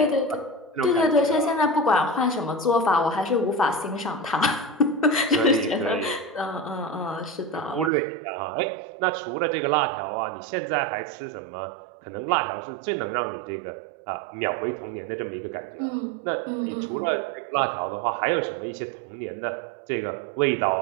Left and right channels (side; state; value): left; drops out; at 7.9 s